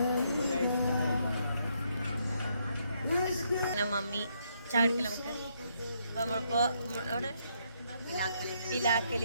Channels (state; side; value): inverted; both; correlation -0.74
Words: മമ്മി ചാടിക്കല നമുക്ക്. അപ്പൊ നമ്മളിപ്പോ അവിടെ